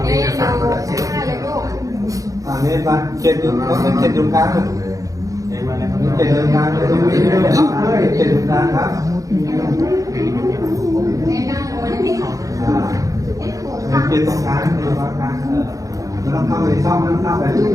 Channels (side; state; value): left; late; 0.16 ms